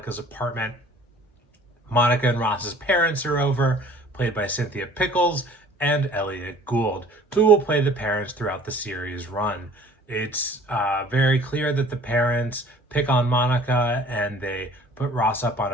apartment. Monica and Ross's parents are over, played by Cynthia Pickles and Elliot Gould, who will play the parents throughout the series run. It's very clear that the parents pick on Monica, and they put Ross up on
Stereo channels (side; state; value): both; normal; correlation 0.50